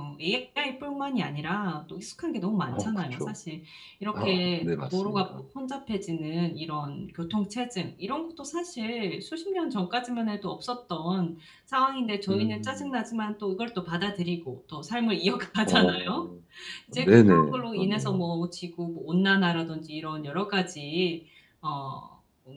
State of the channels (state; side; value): identical; both; correlation 1.00